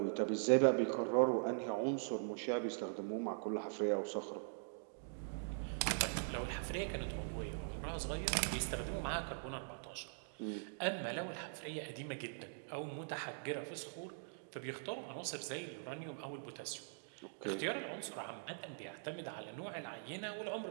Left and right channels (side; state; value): left; silent; digital silence